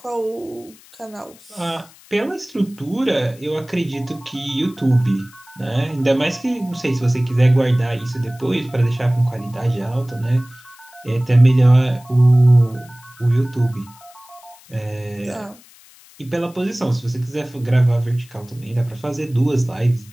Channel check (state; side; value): noise; left; hiss, 25 dB below the sound